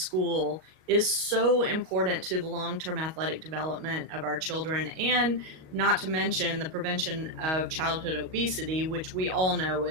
is so important to the long term athletic development of our children, and not to mention the prevention of childhood obesity, which we all know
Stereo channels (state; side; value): late; left; 38 ms